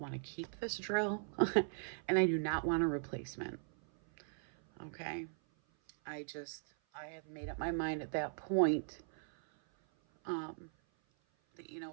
to keep this drill and I do not want a replacement. Okay. I had made up my mind at that point that,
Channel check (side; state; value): left; silent; 52 dB below the other